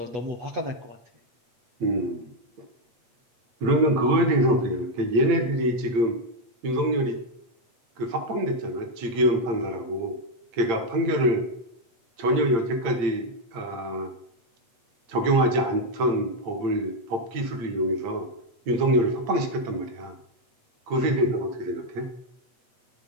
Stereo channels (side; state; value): left; late; 8.7 ms